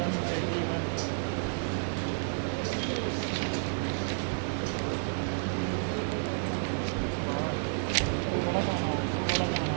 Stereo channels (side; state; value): left; silent; 57 dB below the other